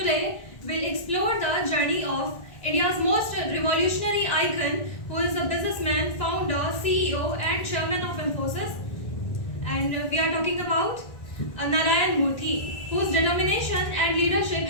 we'll explore the journey of India's most revolutionary icon, who is a businessman, founder, CEO, and chairman of Infosys. And we are talking about Narayan Murthy, whose determination and leadership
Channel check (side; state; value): right; late; 1.9 ms